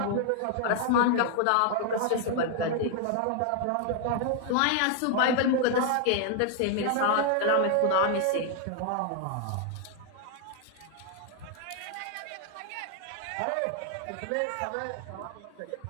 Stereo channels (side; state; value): both; different; correlation 0.00